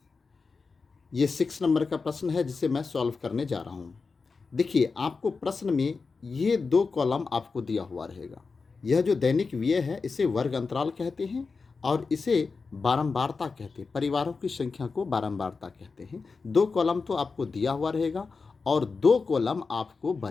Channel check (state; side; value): quieter; right; 4.6 dB